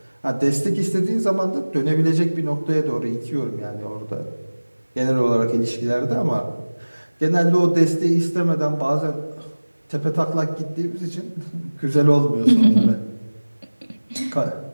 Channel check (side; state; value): both; inverted; correlation -1.00